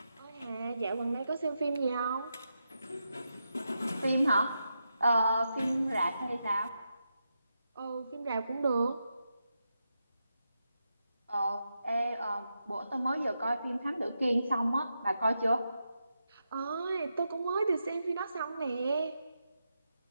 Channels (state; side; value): inverted; both; correlation -0.86